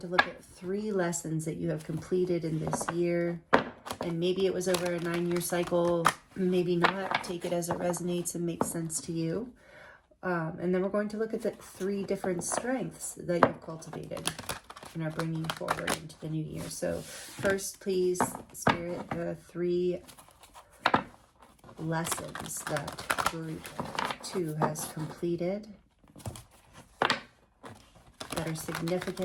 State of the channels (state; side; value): identical; both; correlation 1.00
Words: look at 3 lessons that you have completed in this year. And maybe it was over a 9-year cycle, maybe not. Take it as it resonates and makes sense to you. And then we're going to look at the 3 different strengths that you've cultivated and are bringing forward into the new year. So first, please, Spirit, 3 lessons that group 2 has completed that are